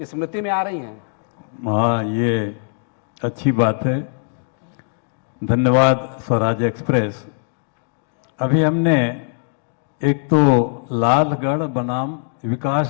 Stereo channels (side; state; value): right; silent; 64 dB below the other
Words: स्मृति में आ रही हैं? हाँ, ये अच्छी बात है। धन्यवाद स्वराज एक्सप्रेस। अभी हमने एक तो लालगढ़ बनाम